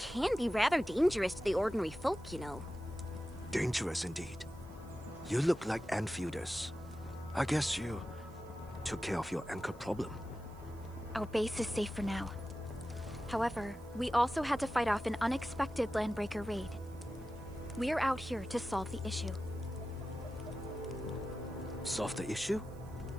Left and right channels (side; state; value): right; noise; hiss, 27 dB below the sound